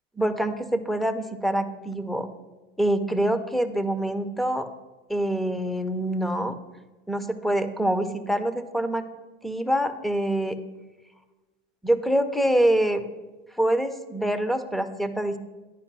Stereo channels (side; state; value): both; normal; correlation 0.86